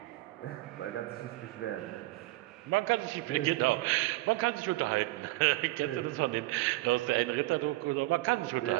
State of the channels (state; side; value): quieter; left; 19.7 dB